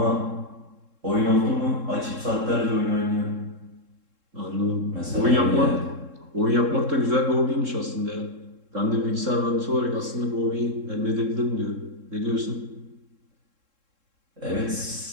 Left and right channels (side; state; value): left; late; 3.7 ms